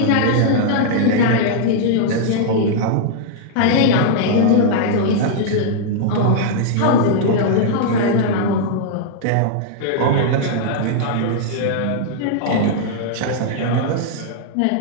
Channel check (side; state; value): both; different; correlation -0.01